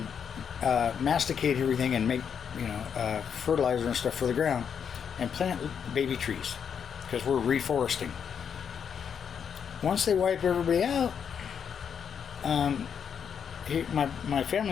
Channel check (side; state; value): right; quieter; 7.4 dB